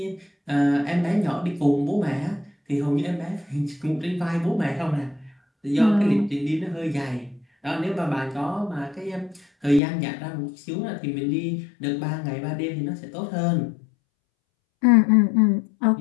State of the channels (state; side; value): drops out; right; at 9.8 s